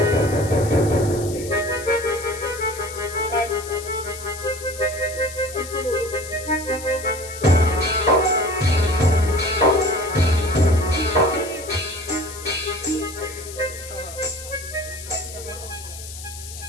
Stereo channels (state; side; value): noise; left; hiss, 13 dB below the sound